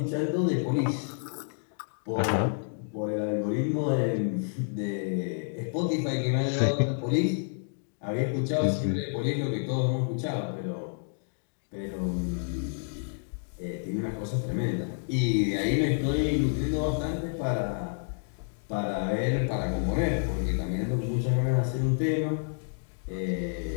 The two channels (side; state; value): right; silent; digital silence